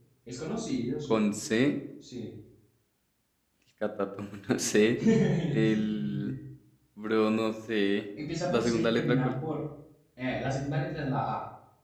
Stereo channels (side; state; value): both; identical; correlation 1.00